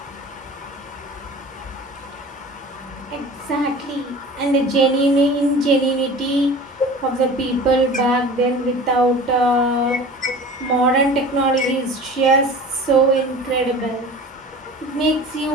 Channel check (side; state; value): both; normal; correlation 0.40